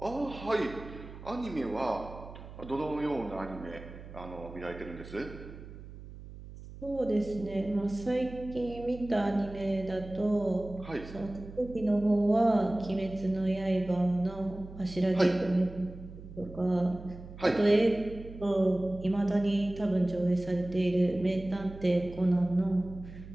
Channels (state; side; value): noise; right; hum, 15 dB below the sound